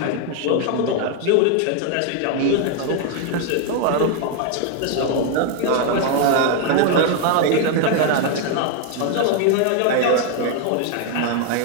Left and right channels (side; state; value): both; different; correlation 0.00